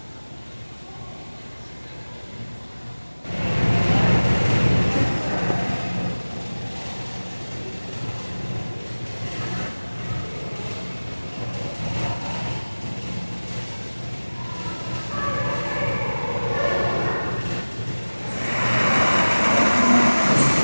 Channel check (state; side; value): inverted; both; correlation -1.00